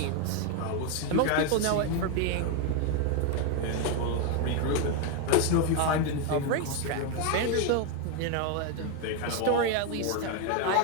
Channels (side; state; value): both; different; correlation 0.01